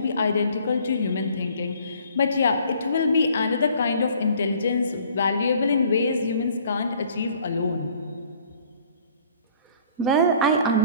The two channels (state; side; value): inverted; both; correlation -0.56